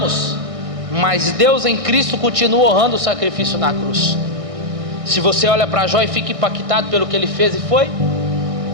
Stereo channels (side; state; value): left; late; 1.6 ms